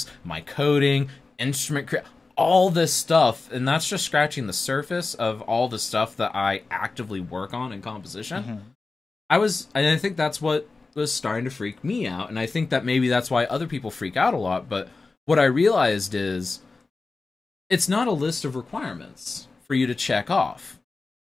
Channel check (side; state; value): right; quieter; 3.8 dB